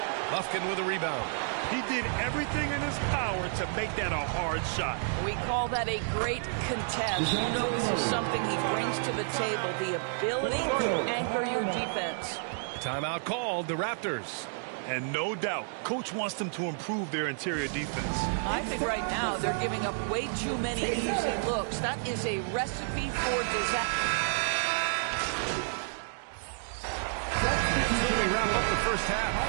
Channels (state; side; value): silent; left; digital silence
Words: Bufkin with a rebound. He did everything in his power to make that a hard shot. We call that a great contest. You know this is something he brings to the table, the ability to anchor your defense. Timeout called, the Raptors. And no doubt, coach wants them to improve their interior defense. I think right now they're giving up way too many easy looks. That is a recipe for disaster. We wrap up the first half.